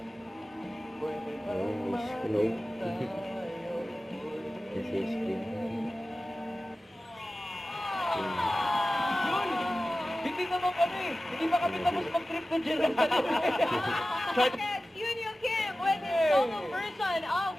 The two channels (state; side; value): normal; both; correlation 0.95